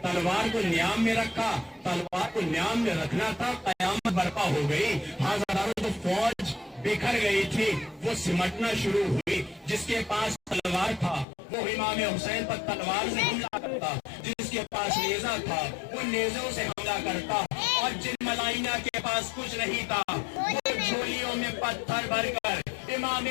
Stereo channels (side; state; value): right; drops out; at 11.2 s